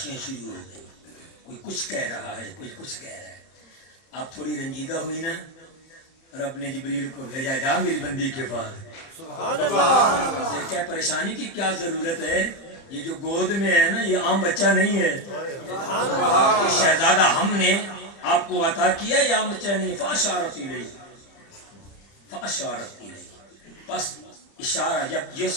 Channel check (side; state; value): right; late; 30 ms